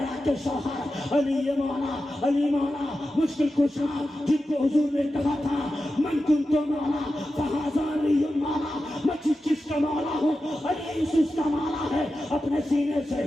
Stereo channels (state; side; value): normal; both; correlation 0.92